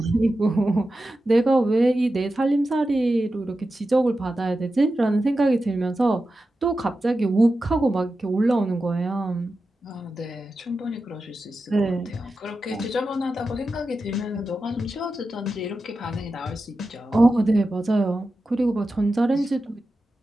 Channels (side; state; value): both; normal; correlation 0.92